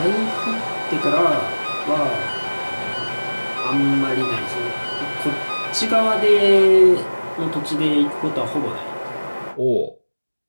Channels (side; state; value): both; inverted; correlation -1.00